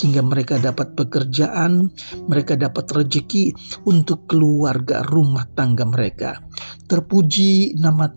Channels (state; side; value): inverted; both; correlation -1.00